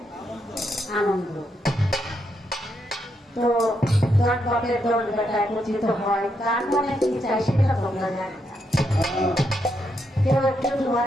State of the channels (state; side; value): normal; both; correlation 0.80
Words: আনন্দ। তো দল বাপের দল বেটা একত্রিত হয়, কার মনে কি চাই সেটা তোমরা জানি না। কেউ একটু